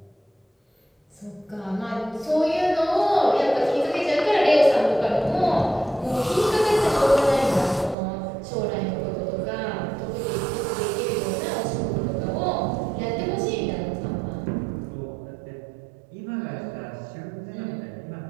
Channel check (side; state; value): left; drops out; at 8.0 s